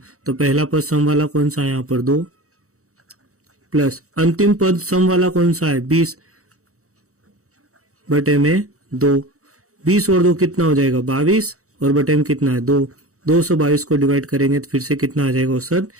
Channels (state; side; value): late; left; 0.65 ms